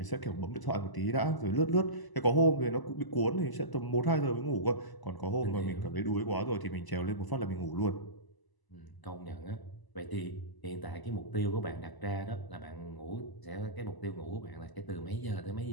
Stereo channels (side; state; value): right; late; 1.0 ms